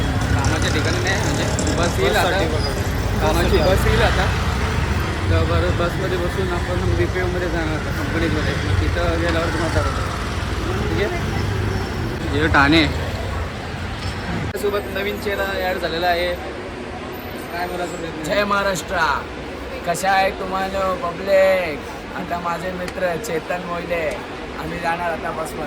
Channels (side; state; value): both; identical; correlation 1.00